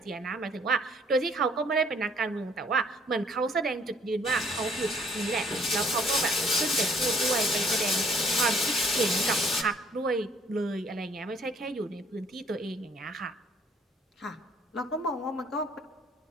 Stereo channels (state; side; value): normal; both; correlation 0.61